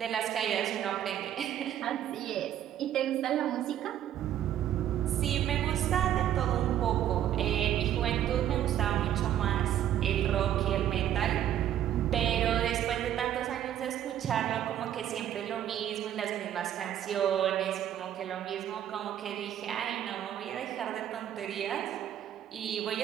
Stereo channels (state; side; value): quieter; left; 11.0 dB